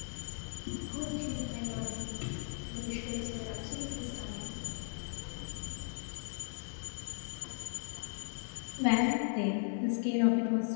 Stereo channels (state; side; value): silent; right; digital silence